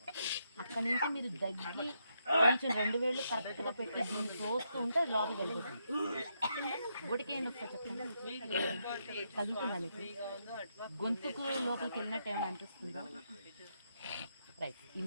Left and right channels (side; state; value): both; inverted; correlation -0.80